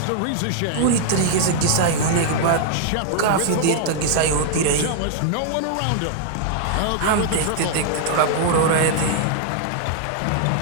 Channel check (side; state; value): both; different; correlation -0.01